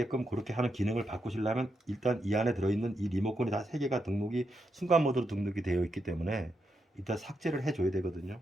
그렇게 하는 기능을 바꾸시려면 일단 이 안에 들어있는 이 리모컨이 다 3개가 등록이 순간 모드로 등록이 되어 있기 때문에 일단 삭제를 해줘야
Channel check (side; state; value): both; normal; correlation 0.83